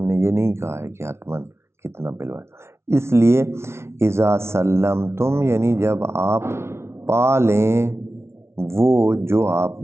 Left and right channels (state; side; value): late; left; 0.13 ms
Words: نے یہ نہیں کہا ہے کہ حتماً کتنا پلوائیں۔ اس لیے اذا سلمتم، یعنی جب آپ پا لیں وہ جو آپ